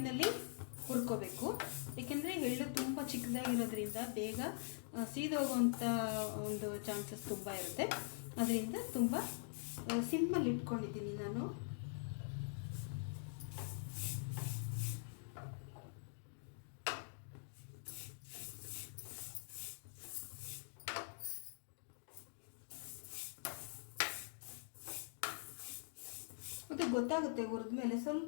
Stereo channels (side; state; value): right; silent; digital silence